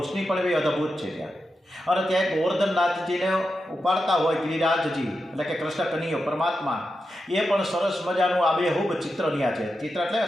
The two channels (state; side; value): normal; both; correlation 0.89